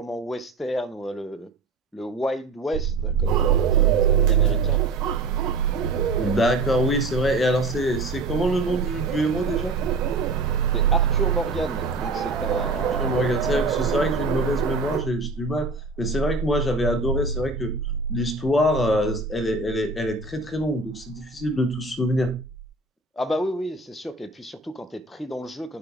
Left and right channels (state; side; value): quieter; left; 3.3 dB